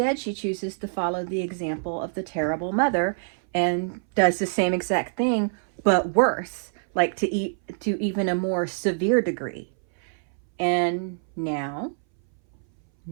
she chooses to follow the example of the terrible mother and does the same exact thing, but worse, like to even a more severe degree. And now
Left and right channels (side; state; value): left; silent; 60 dB below the other